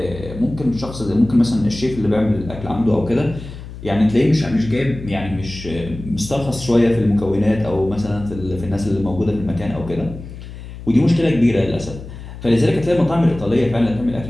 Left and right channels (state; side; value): noise; left; hum, 13 dB below the sound